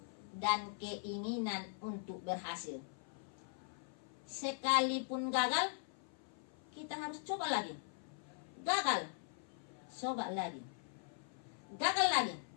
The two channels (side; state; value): right; silent; 51 dB below the other